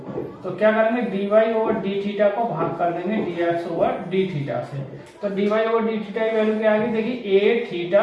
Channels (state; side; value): identical; both; correlation 1.00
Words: तो क्या करेंगे, d y over d theta को भाग कर देंगे d x over d theta से। तो d y over d theta की वैल्यू क्या आ गई, देखिए ए